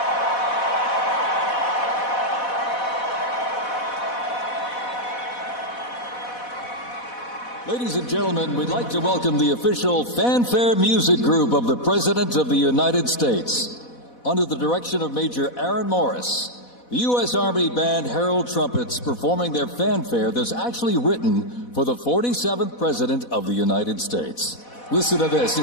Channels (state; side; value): late; right; 4.1 ms